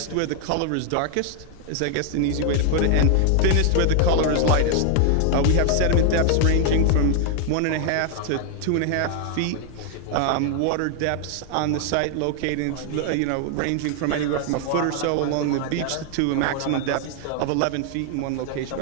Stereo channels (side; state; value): both; different; correlation 0.00